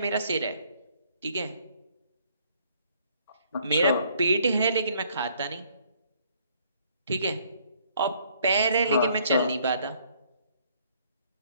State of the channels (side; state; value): both; inverted; correlation -0.64